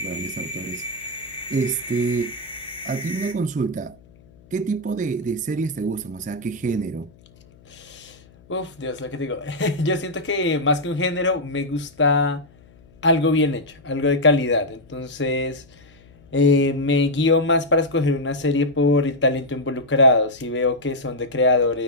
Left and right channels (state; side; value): noise; left; hum, 27 dB below the sound